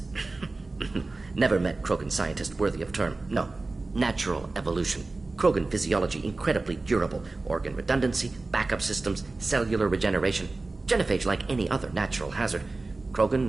Never met Krogan scientist worthy of term. No. Natural evolution. Krogan physiology incredibly durable. Organ redundancy, backup systems, cellular regeneration. Genophage like any other natural hazard. Krogan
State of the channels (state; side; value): quieter; left; 3.4 dB